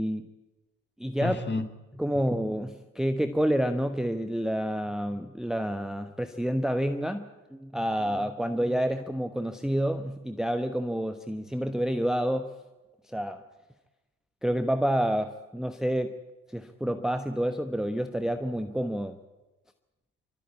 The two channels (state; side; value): normal; both; correlation 0.95